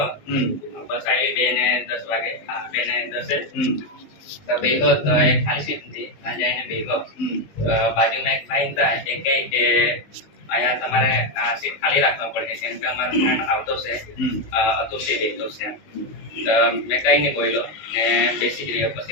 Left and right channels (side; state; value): right; late; 19 ms